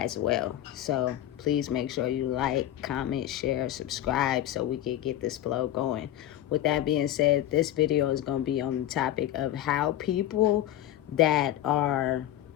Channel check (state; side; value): quieter; right; 12.8 dB